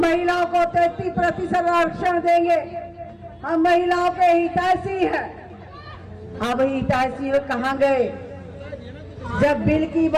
को 33% आरक्षण देंगे, हम महिलाओं के हितैषी हैं। अब हितैषी कहाँ गए? जब बिल की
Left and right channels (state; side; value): identical; both; correlation 1.00